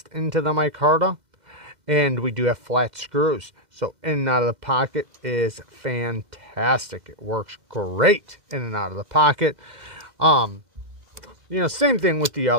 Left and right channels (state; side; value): late; left; 2.1 ms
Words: into the micarta. And we do have flat screws. So in and out of the pocket is fantastic. It works great in and out of the pocket. You know, same thing with the